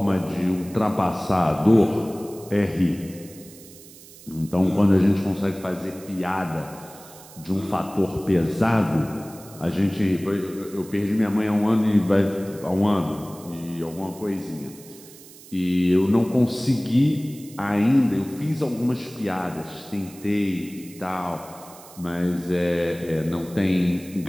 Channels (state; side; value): noise; right; hiss, 20 dB below the sound